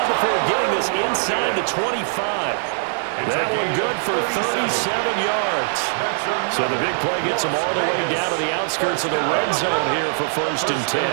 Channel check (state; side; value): silent; left; 65 dB below the other